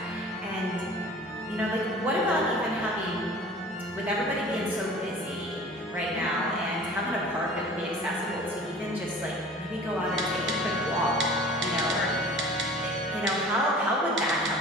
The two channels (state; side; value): normal; both; correlation 0.44